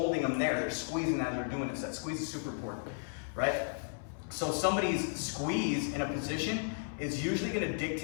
them there, they're squeezing as they're doing this. That squeeze is super important, right? So somebody's squeeze in a position is usually gonna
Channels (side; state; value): right; silent; 55 dB below the other